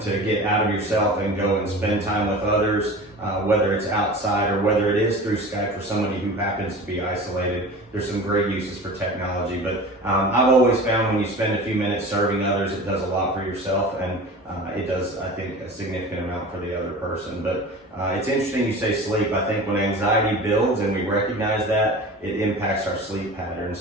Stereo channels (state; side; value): normal; both; correlation 0.36